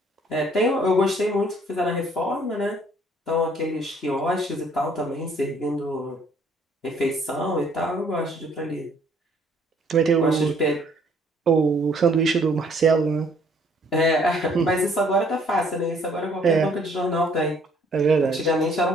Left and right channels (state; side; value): normal; both; correlation 0.61